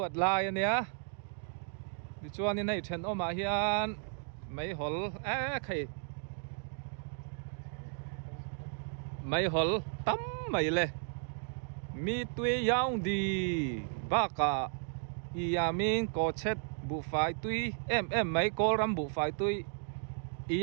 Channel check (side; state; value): left; silent; 55 dB below the other